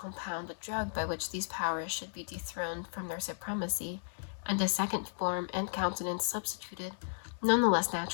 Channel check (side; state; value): right; silent; digital silence